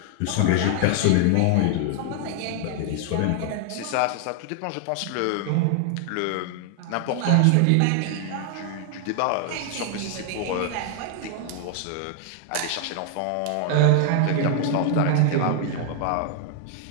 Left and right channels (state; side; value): different; both; correlation 0.00